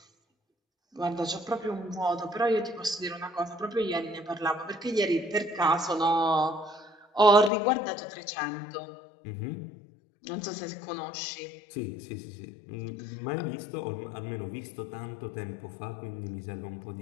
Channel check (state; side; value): drops out; right; at 7.5 s